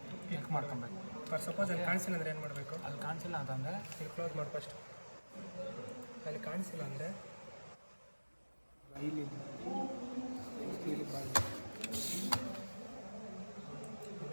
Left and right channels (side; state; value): both; inverted; correlation -1.00